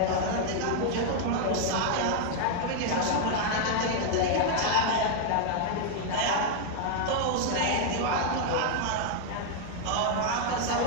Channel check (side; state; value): both; different; correlation 0.00